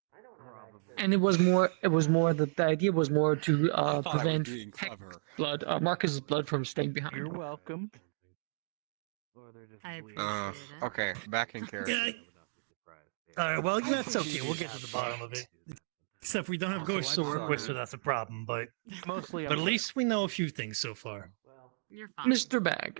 And it was more the idea was more to prevent blood, Marcus's blood from staying behind. You're welcome. I appreciate it. Okay, back in character. All right, well, that's okay. We'll get to the bottom of it. Except we don't have ghosts to work with, so that's a problem. But at least we know a few things so far. You're fine. Mr.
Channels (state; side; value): silent; left; digital silence